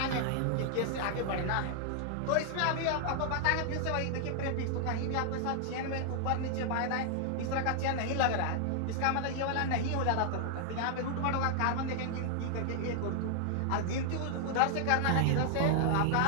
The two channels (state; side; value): different; both; correlation 0.00